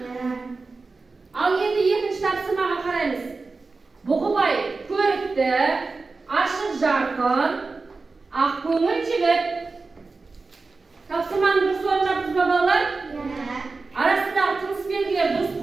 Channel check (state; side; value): quieter; left; 4.0 dB